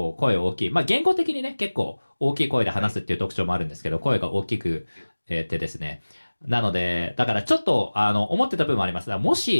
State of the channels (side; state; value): both; inverted; correlation -1.00